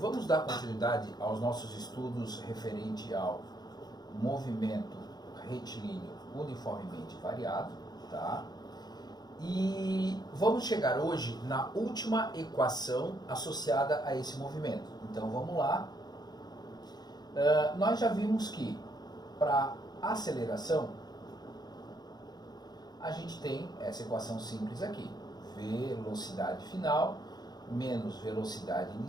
dar continuidade aos nossos estudos referente ao movimento retilíneo uniformemente variado, tá? E vamos chegar hoje na última equação associada a esse movimento. Então vamos lá. Nós já vimos que para aceleração a gente tem essa equação simples aqui: velocidade final menos velocidade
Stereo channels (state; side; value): late; right; 0.20 ms